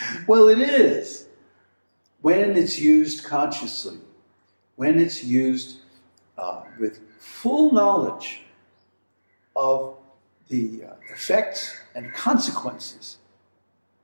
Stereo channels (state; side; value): inverted; both; correlation -1.00